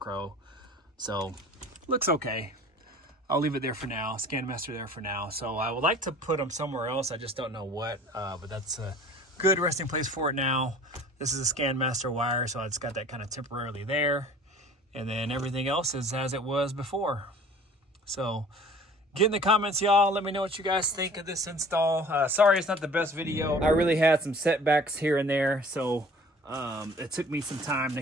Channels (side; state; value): both; normal; correlation 0.47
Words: so looks okay. I'll leave it there for now. Scan master there for now. So I would like to put them somewhere else. I just don't know what, but that's a good resting place for it now. This is a scan master wire, so I just got that kind of temporarily there, and then everything else is as it was before. So get in the comments, y'all. Let me know what you guys think of this install. Sorry it's not the best video. I really had some setbacks here and there, so it took me some time to